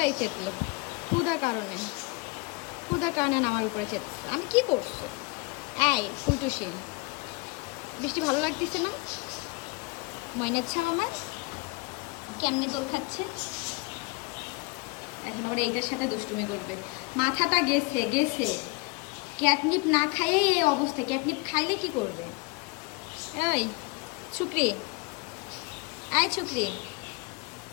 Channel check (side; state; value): right; quieter; 27.8 dB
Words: চেতলো, হুদার কারণে আমার উপরে চেতেছে। আমি কি করছো? এই ফুলটুসি, বৃষ্টি ভালো লাগতেছে না? ময়নার ছাও আমার কেমনে দোল খাচ্ছে এখন। ওরা এইটার সাথে দুষ্টুমি করবে। মাথাটা গেছে। ক্যাটনিপ না খাইয়েই এই অবস্থা। ক্যাটনিপ খাইলে কি করবে? এই ছুকরি,